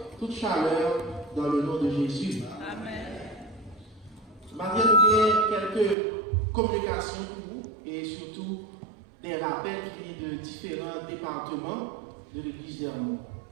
toute chaleur dans le nom de Jésus. Amen. Maintenant, nous avons quelques communications pour vous et surtout des rappels qui viennent de différents départements de l'église d'Hermont.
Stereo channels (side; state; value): left; drops out; at 6.0 s